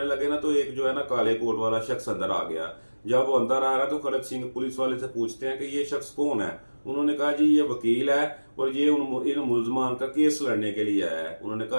लगे ना, तो एक जो है ना काले कोट वाला शख्स अंदर आ गया। जब वो अंदर आ रहा, तो खड़ग सिंह पुलिस वाले से पूछते हैं कि ये शख्स कौन है? उन्होंने कहा जी ये वकील है, और ये इन मुलजमान का केस लड़ने के लिए आया है। उन्होंने कहा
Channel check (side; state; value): both; inverted; correlation -1.00